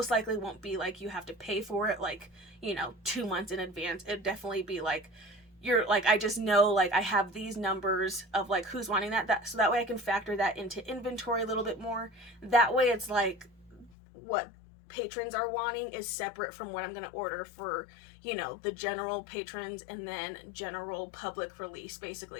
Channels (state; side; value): drops out; right; at 13.9 s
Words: likely won't be like you have to pay for it like, you know, 2 months in advance. It'd definitely be like you're like, I just know like I have these numbers of like who's wanting that so that way I can factor that into inventory a little bit more. That way it's like what patrons are wanting is separate from what I'm going to order for, you know, the general patrons and then general public release,